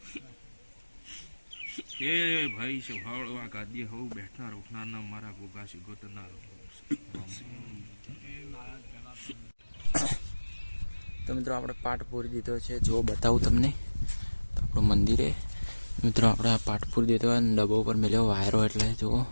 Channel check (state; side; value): inverted; both; correlation -1.00